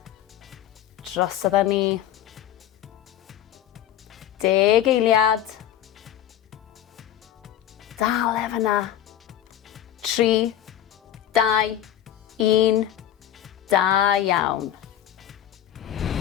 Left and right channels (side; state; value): right; quieter; 11.4 dB